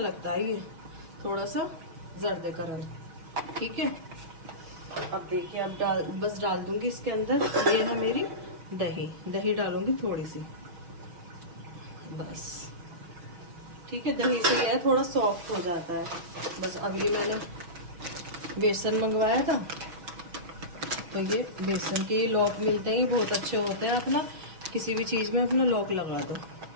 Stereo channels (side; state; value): left; late; 6.0 ms